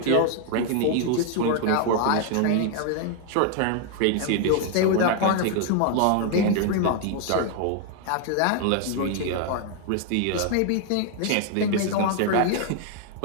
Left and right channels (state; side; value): different; both; correlation 0.00